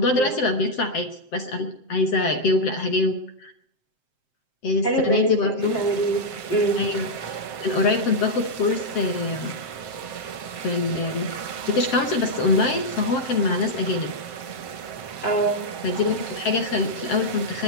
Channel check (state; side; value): late; right; 7.7 ms